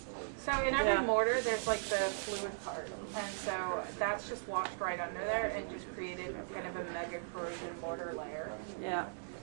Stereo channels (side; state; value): left; silent; digital silence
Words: So in every Yeah. mortar, there's like the fluid part, and so that's just washed right under there and just created kind of a mega corrosion mortar layer. Yeah.